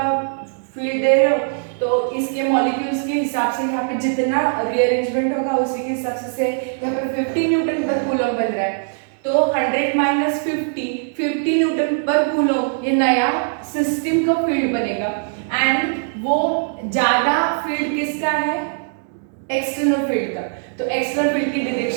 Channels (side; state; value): left; silent; 65 dB below the other